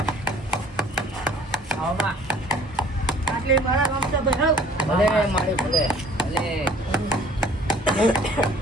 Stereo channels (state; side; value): normal; both; correlation 0.54